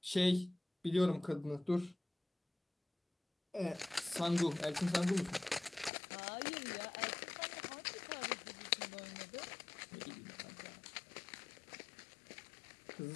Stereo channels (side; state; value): right; drops out; at 5.9 s